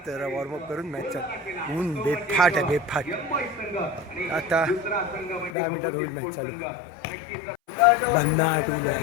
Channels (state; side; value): drops out; right; at 5.6 s